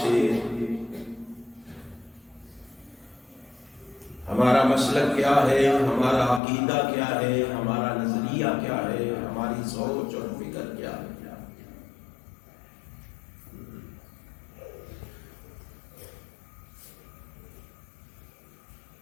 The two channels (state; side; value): drops out; right; at 6.4 s